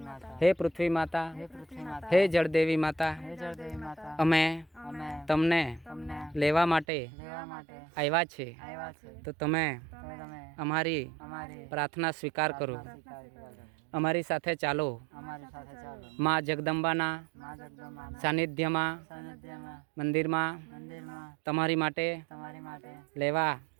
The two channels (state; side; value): drops out; left; at 6.9 s